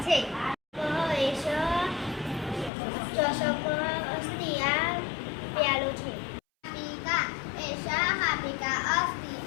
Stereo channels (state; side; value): drops out; right; at 2.7 s